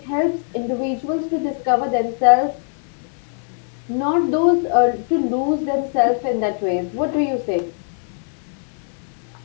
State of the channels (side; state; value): right; silent; 58 dB below the other